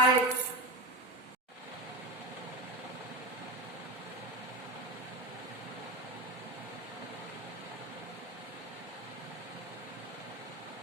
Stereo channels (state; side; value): normal; both; correlation 0.21